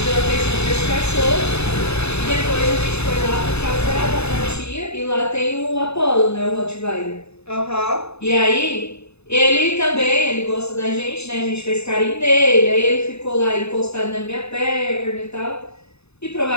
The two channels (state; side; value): late; right; 0.80 ms